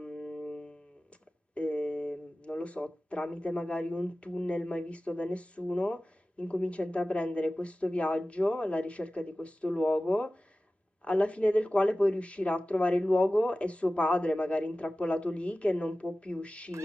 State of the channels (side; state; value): both; normal; correlation 0.96